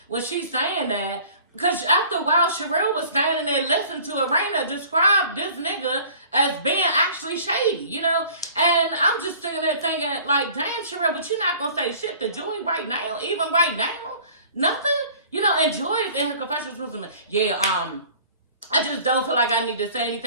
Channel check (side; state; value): both; inverted; correlation -0.48